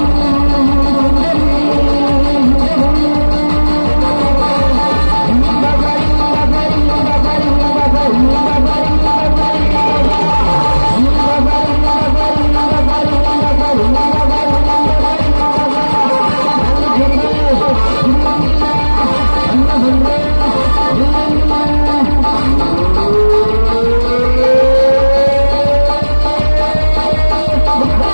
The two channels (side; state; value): both; inverted; correlation -1.00